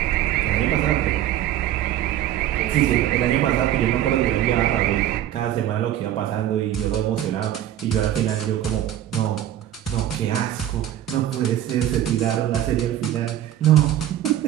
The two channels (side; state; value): left; quieter; 12.1 dB